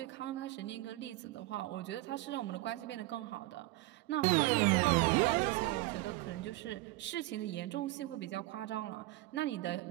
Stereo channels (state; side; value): quieter; left; 18.8 dB